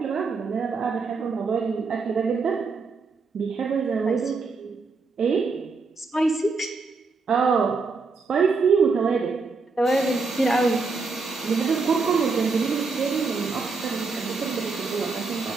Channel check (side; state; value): left; quieter; 4.3 dB